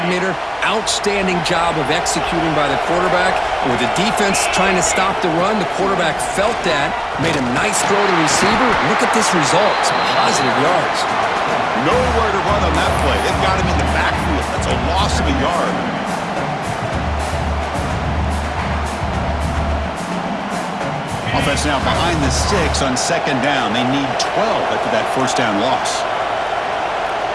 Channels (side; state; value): both; identical; correlation 1.00